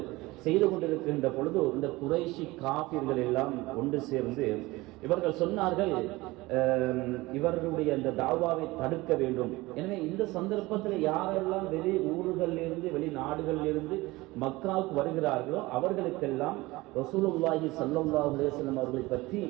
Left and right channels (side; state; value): left; quieter; 20.7 dB